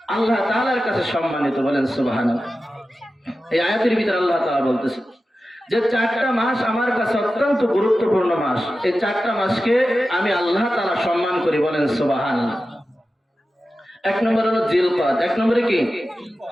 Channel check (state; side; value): normal; both; correlation 0.93